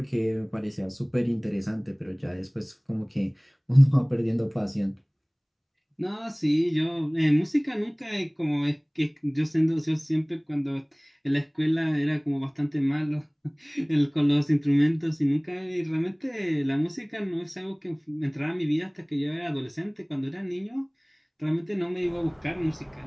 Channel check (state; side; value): identical; both; correlation 1.00